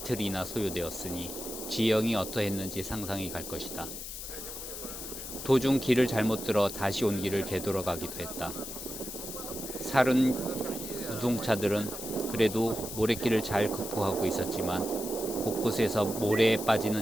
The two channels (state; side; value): noise; left; hiss, 8 dB below the sound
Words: 소요되었으니 지형이 어떠했는지 상상이 갈 것이다. 도중 길을 잘못 들어 다시 온 길을 되돌아가기도 했다. 살은 우송차들은 그래도 모래길을 잘 극복하고 있었지만 곳곳에서 모래에